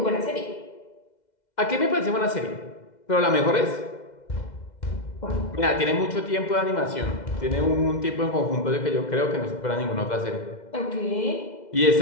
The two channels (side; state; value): right; late; 2.1 ms